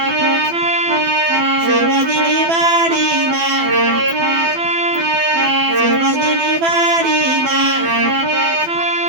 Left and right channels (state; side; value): late; left; 12 ms